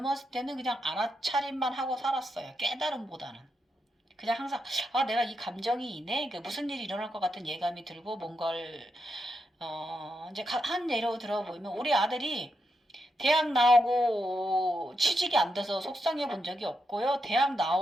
때는 그냥 알아차림만 하고 살았어요. 깨달음보다는. 그냥 항상 내가 이 감정이 이네? 무슨 일이 일어날 것 같은 예감이 들고 뭔가를 이제 한 예로 들어보면 우리 아들이 대학 나오고 취직이 안 돼서 속상해 본 적이 없고요. 대학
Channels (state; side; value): normal; both; correlation 0.84